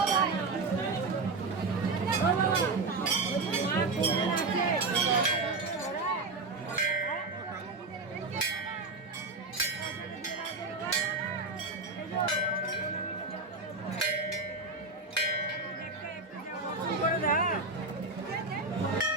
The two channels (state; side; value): quieter; left; 3.7 dB